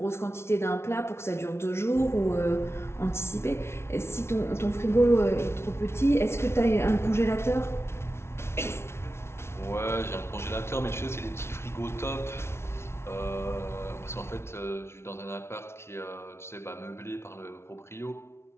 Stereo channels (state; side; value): late; right; 0.12 ms